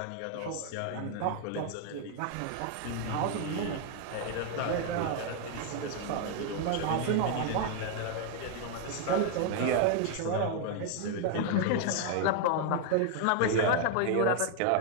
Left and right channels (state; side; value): different; both; correlation 0.00